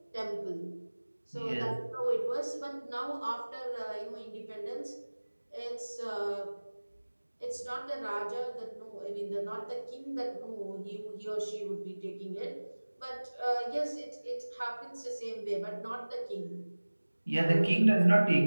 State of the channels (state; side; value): inverted; both; correlation -1.00